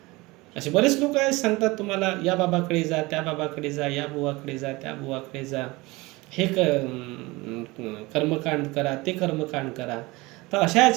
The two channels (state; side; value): quieter; left; 22.5 dB